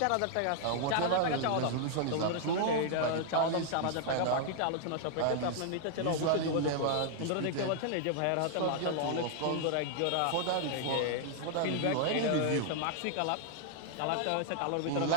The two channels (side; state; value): both; different; correlation -0.01